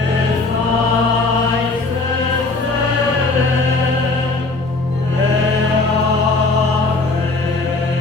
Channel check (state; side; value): quieter; right; 3.4 dB